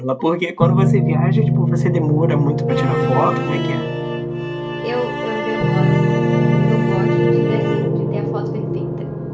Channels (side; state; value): both; identical; correlation 1.00